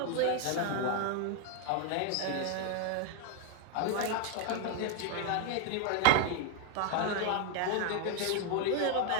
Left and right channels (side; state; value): both; different; correlation 0.01